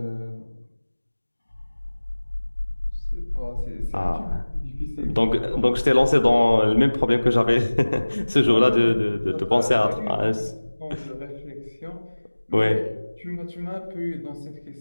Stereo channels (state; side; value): inverted; both; correlation -1.00